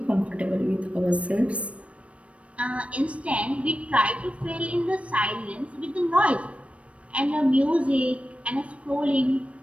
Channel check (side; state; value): left; late; 0.063 ms